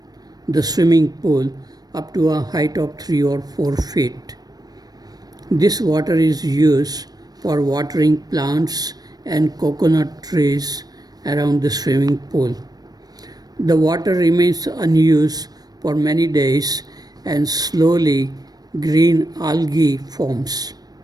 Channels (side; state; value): left; late; 0.19 ms